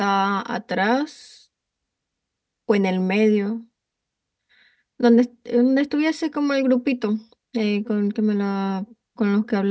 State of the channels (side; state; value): both; identical; correlation 1.00